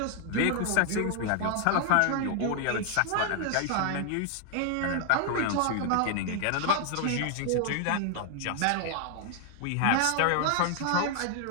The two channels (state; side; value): different; both; correlation 0.00